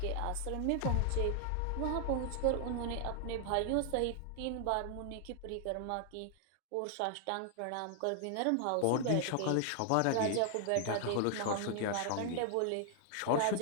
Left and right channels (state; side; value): different; both; correlation 0.00